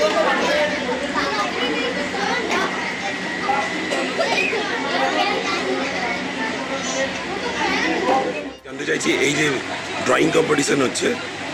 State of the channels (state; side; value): identical; both; correlation 1.00